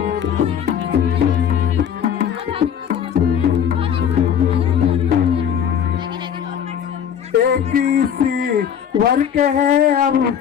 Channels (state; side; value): quieter; right; 8.7 dB